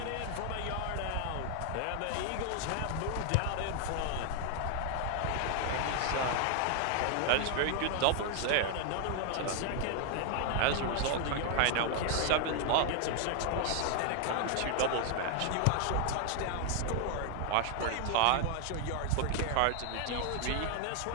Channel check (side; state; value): both; different; correlation 0.00